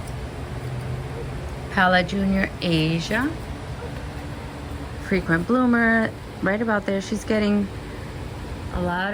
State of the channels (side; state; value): both; identical; correlation 1.00